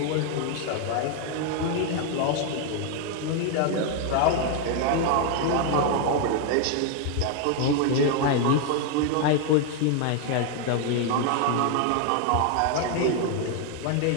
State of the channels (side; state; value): both; different; correlation 0.00